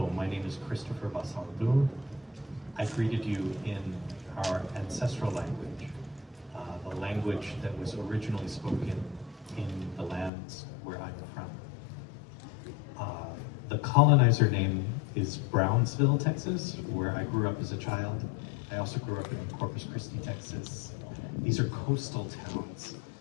my name is Christopher Basaldu. I greeted you in our ancestral language, the language that was originally spoken in the lands where I'm from. The colonizer name is Brunsbüttel, Texas, where I grew up as a child. I also grew up in Corpus Christi, Texas. These are coastal towns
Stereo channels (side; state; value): right; drops out; at 10.3 s